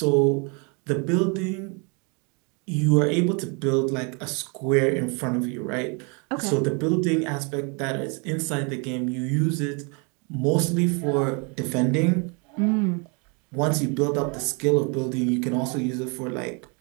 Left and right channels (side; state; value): left; quieter; 33.8 dB